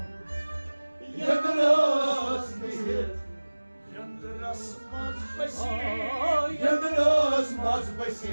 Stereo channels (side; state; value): both; inverted; correlation -1.00